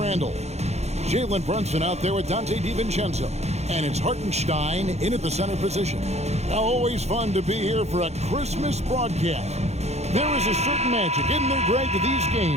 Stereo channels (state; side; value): late; left; 0.31 ms